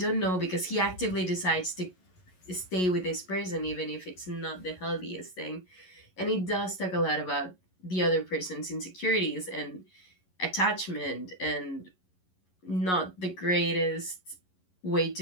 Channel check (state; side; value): late; right; 11 ms